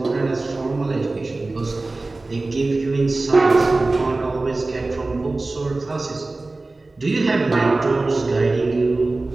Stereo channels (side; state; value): left; quieter; 3.2 dB